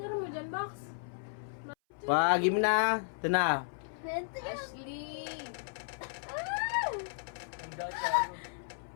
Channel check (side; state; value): right; silent; 55 dB below the other